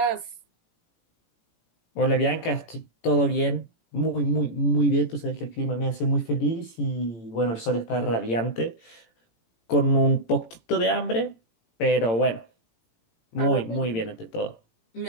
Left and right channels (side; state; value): right; late; 18 ms